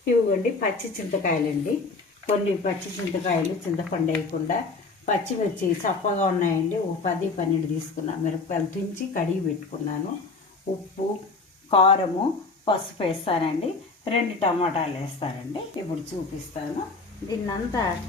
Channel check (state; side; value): quieter; right; 3.9 dB